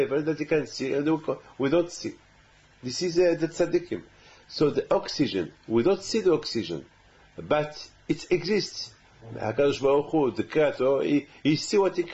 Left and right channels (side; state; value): both; identical; correlation 1.00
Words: that they can see, and we don't see. This is the tzaddikim. So the oxygen, we don't see the oxygen, but it exists. HaKadosh Baruch Hu, the Creator, he see what he